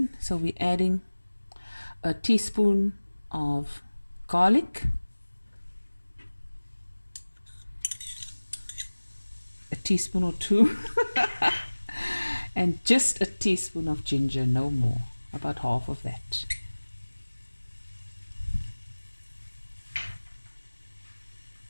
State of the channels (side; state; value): both; inverted; correlation -1.00